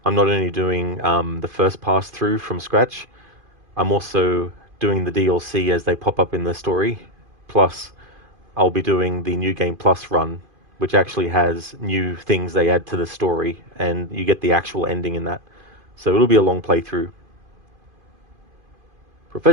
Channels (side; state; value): left; late; 2.5 ms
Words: I'm not only doing the first pass through from scratch, I'm also doing the DLC as they pop up in the story, plus I'll be doing the New Game Plus run, which actually has new things they add to the story, and you get the actual ending in that. So it'll be a long playthrough.